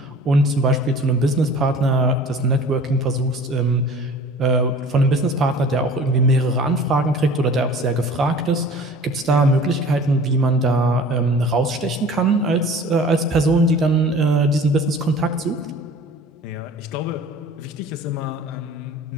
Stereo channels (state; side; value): normal; both; correlation 0.45